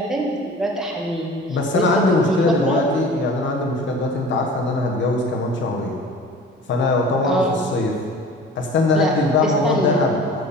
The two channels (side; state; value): both; normal; correlation 0.42